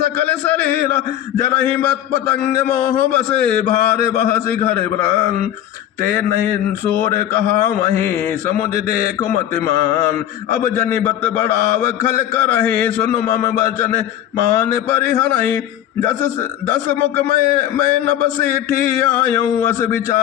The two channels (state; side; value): quieter; right; 11.7 dB